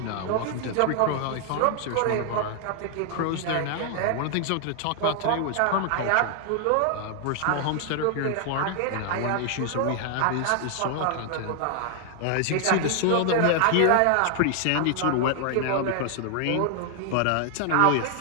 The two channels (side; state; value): both; different; correlation 0.00